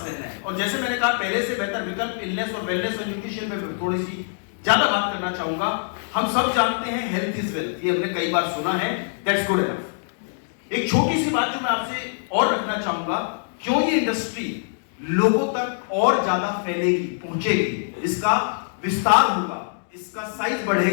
रहना है। और जैसे मैंने कहा, पहले से बेहतर विकल्प इलनेस और वेलनेस और न्यूट्रिशन पे थोड़ी सी ज्यादा बात करना चाहूंगा। हम सब जानते हैं हेल्थ इज वेल्थ, ये हमने कई बार सुना है, दैट्स गुड एनफ। एक छोटी सी बात जो मैं आपसे और रखना चाहूंगा, क्यों ये इंडस्ट्री लोगों तक और ज्यादा फैलेगी, पहुंचेगी, इसका विस्तार होगा, इसका साइज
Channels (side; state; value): right; silent; digital silence